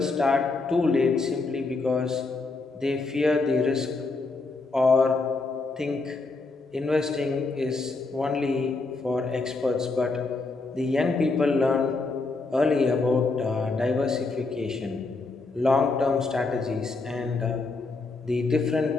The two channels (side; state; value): right; quieter; 3.7 dB